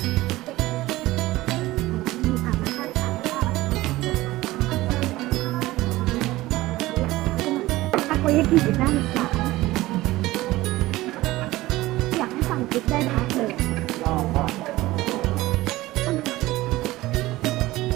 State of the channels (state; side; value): quieter; left; 17.9 dB